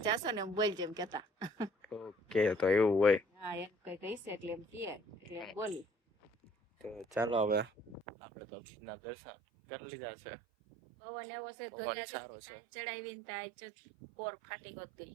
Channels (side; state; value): left; drops out; at 8.1 s